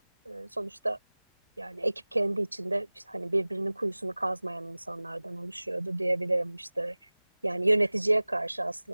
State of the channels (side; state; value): both; inverted; correlation -1.00